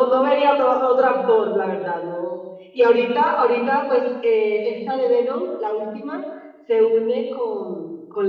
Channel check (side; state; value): both; identical; correlation 1.00